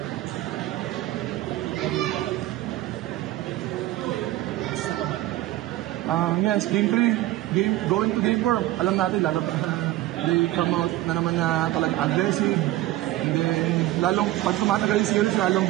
Yes, game 3, going to game 4, alam natin, lalo pa they come out na naman na talagang aggressive. And then, lalong, pag tumatagal yung series, lalong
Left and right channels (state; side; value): quieter; left; 16.0 dB